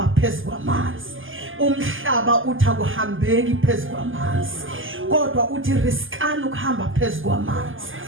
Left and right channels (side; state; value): left; late; 0.58 ms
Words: phezu kwamanzi. Umhlaba uthi akuhambeki phezu kwamanzi kodwa uthi riskani ukuhamba phezu kwamanzi.